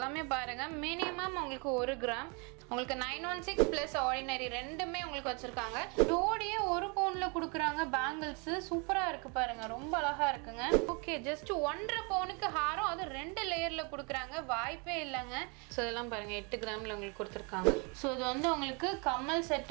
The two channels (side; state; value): left; quieter; 32.5 dB